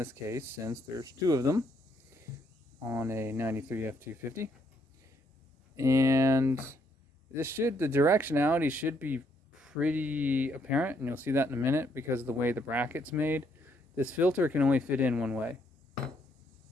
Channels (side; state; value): both; normal; correlation 0.72